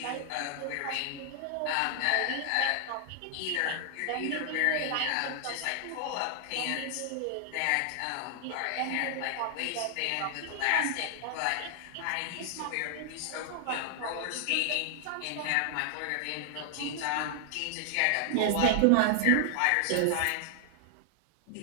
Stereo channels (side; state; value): both; different; correlation 0.00